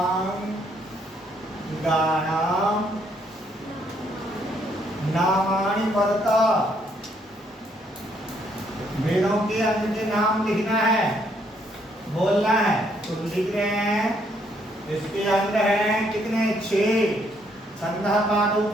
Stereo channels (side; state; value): both; normal; correlation 0.70